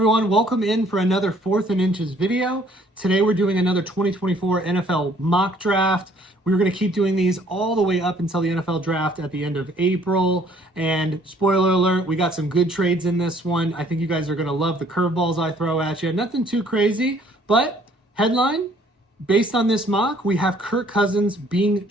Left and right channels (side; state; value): both; normal; correlation 0.60